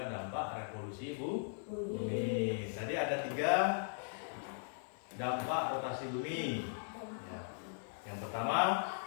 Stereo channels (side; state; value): right; silent; digital silence